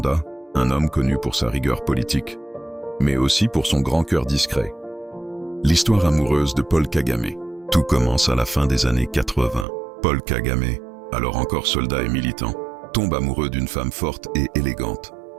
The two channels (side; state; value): left; drops out; at 9.7 s